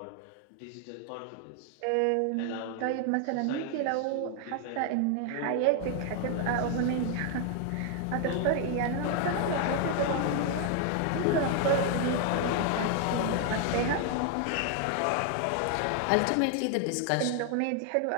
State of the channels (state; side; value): different; both; correlation 0.00